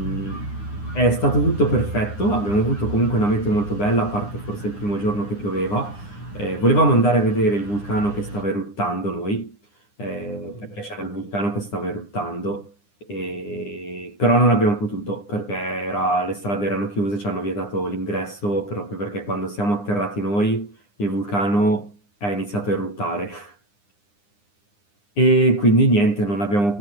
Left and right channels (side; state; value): right; late; 9.8 ms